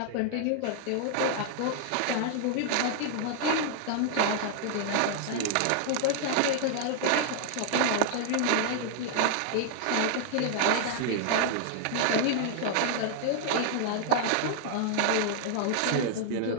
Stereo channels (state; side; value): different; both; correlation 0.00